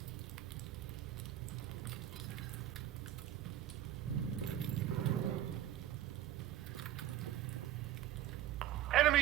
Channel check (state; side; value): quieter; left; 12.4 dB